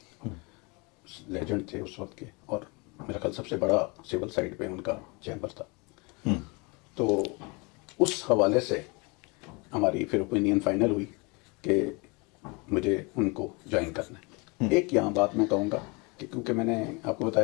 لیجنڈ تھے اس وقت کے, اور میرا خیال سب سے بڑا سول سائڈ پہ ان کا چیمبر تھا. تو اس حوالے سے ہماری پھر اوپینین فائنل ہوئی کہ مجھے ان کو جوائن کرنا ہے. ایک یہاں بات میں کہوں گا کہ کیونکہ میں نے آپ کو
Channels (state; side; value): quieter; right; 28.6 dB